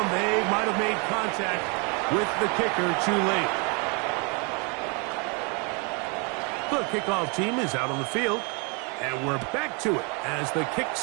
They might have made contact with the kicker too late. The kickoff team is out on the field, and we're back to it as the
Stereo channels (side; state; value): left; quieter; 33.3 dB